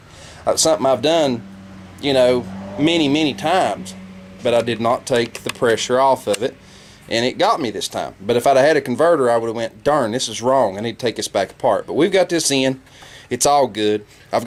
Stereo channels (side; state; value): both; identical; correlation 1.00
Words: Something I've done, many times, but I did not take the pressure off of it. And it got me this time. But if I'd have had a converter, I would have went, darn, this is wrong. I need to take this back apart. But we've got this in. It's all good. I've